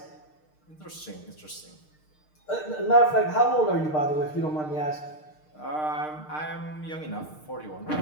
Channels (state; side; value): late; right; 6.5 ms